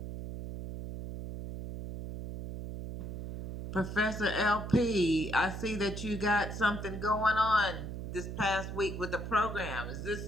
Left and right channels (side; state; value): right; noise; hum, 7 dB below the sound